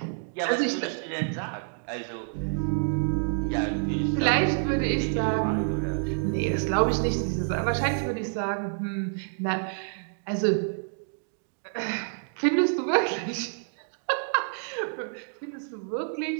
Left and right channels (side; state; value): left; silent; digital silence